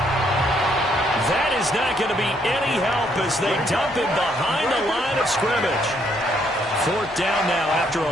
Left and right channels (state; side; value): normal; both; correlation 0.71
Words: That is not going to be any help as they dump him behind the line of scrimmage. 4th down now after